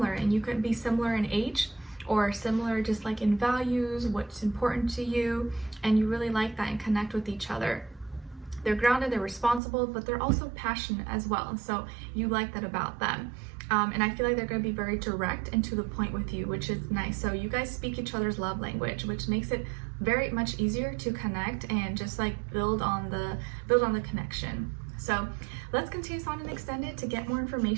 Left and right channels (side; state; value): left; drops out; at 9.6 s